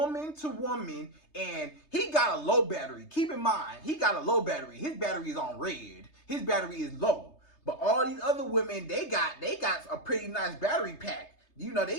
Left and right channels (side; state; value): right; late; 3.3 ms